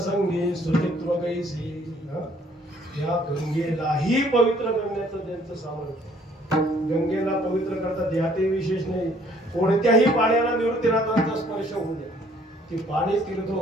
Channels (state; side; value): normal; both; correlation 0.61